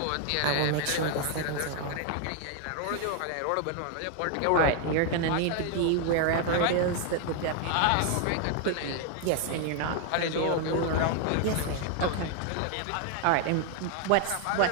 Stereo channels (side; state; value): both; different; correlation 0.00